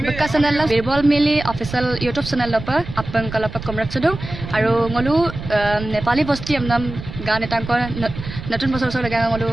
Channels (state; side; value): noise; right; rumble, 10 dB below the sound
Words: বক্কা চেনেল বিৰবল মিলি অফিচিয়েল ইউটিউব চেনেল লপা আপন কলপা কমৰাক চদু আৰু ngolu নেপালী বস্তি আমনাম গান এটাংকৰ নতুন বছৰ বছৰ লাগা ngolu